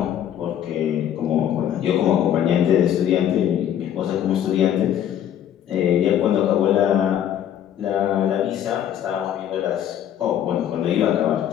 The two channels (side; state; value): right; quieter; 10.3 dB